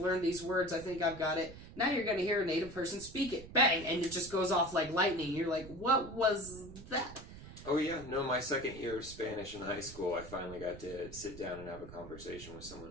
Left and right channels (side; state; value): right; noise; rumble, 14 dB below the sound